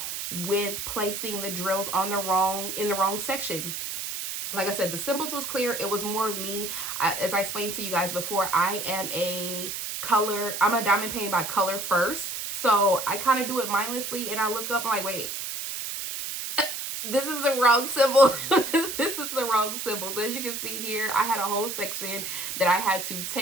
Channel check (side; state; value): right; noise; hiss, 5 dB below the sound